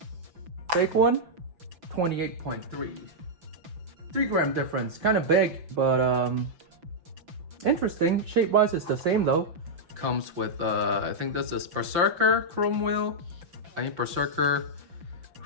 Big one, 28.3. 3 gram difference, kind of big, but interesting. Shape-wise, it's the same though. Comes with, I think this is Berserker chrome wheel. I mean Berserker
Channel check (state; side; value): late; left; 5.9 ms